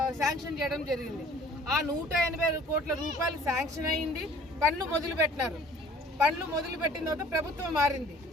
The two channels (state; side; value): normal; both; correlation 0.51